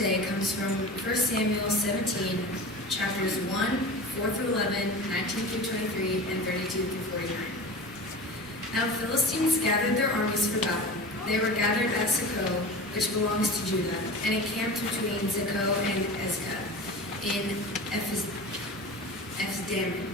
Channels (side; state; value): both; normal; correlation 0.33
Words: comes from 1 Samuel 17, chapters 1, 4 through 11, 19 through 23, and 32 through 49. Now the Philistines gathered their armies for battle. They were gathered at Socoh, which belongs to Judah, and encamped between Socoh and Ezekah. in Ephes-Dammim.